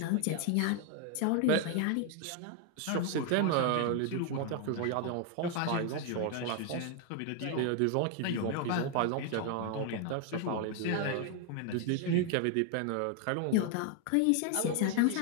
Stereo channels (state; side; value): different; both; correlation 0.00